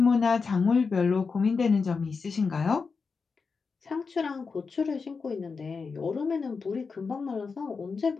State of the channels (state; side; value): quieter; right; 4.9 dB